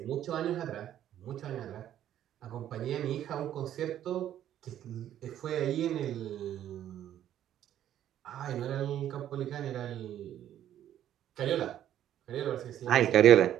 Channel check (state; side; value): quieter; left; 11.3 dB